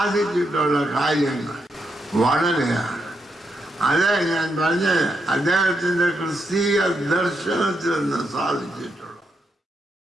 കാര്യങ്ങൾ വളരെയാണ്. അതെ ഞാൻ പറഞ്ഞത്, അദ്ദേഹത്തിൻ്റെ ക്രിസ്തീയ ദർശനത്തിൽ നിന്ന് സാധിച്ചിട്ടുള്ളൂ.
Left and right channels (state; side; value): normal; both; correlation 0.81